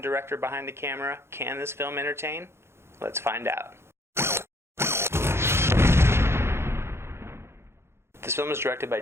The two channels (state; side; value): late; left; 0.12 ms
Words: director behind the camera, can this film entertain? Let's find out. This film is directed by